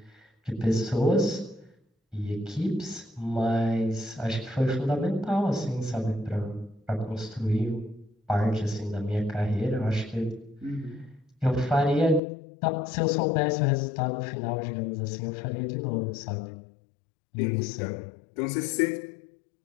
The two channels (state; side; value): drops out; right; at 12.2 s